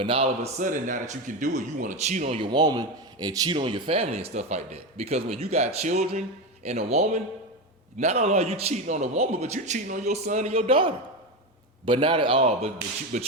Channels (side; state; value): both; normal; correlation 0.16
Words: now all of a sudden, now that you can do it, you want to cheat on your woman and cheat on your family and stuff like that. Because when you got children and a woman, not only are you cheating on a woman, but you cheating on your son and your daughter. But not at all. But